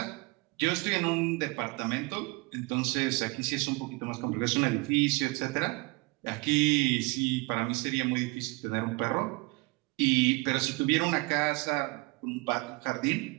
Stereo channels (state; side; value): quieter; left; 26.0 dB